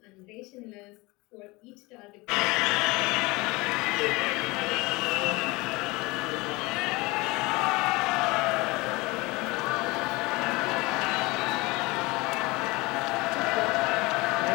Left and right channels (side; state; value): right; quieter; 23.3 dB